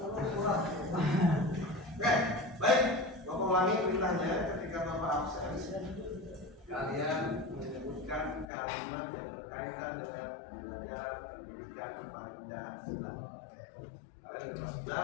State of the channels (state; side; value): drops out; right; at 8.5 s